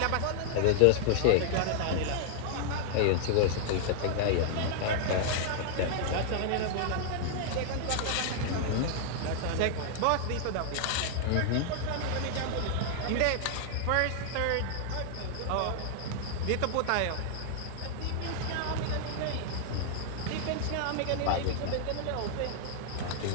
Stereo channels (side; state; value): both; different; correlation -0.01